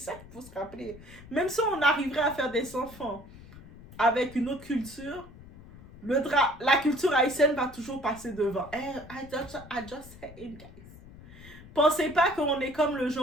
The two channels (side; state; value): left; noise; rumble, 18 dB below the sound